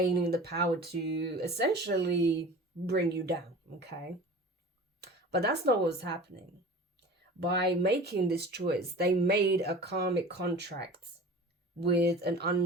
the power to essentially bring you down, okay? But that's not what was happening. By making this choice, they made a karmic contract with an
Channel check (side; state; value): both; normal; correlation 0.39